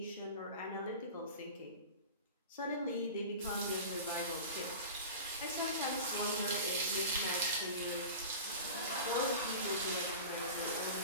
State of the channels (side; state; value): both; inverted; correlation -0.33